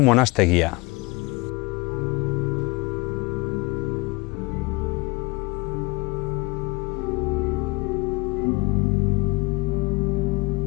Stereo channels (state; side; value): quieter; right; 25.3 dB